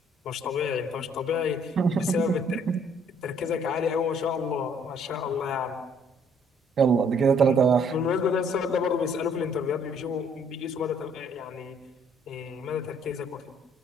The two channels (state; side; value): normal; both; correlation 0.62